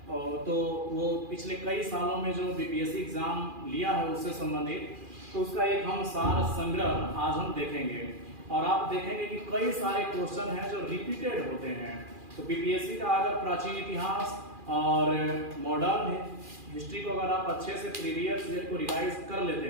तो वो पिछले कई सालों में जो बीपीएससी एग्जाम लिया है उससे संबंधित, तो उसका एक हम सार संग्रह आज हम देखेंगे। और आप देखेंगे कि कई सारे क्वेश्चन हैं जो रिपीटेड होते हैं। तो बीपीएससी का अगर प्राचीन इतिहास और मॉडर्न हिस्ट्री को अगर आप अच्छे से प्रीवियस ईयर को रिवाइज कर लेते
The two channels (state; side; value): late; left; 2.4 ms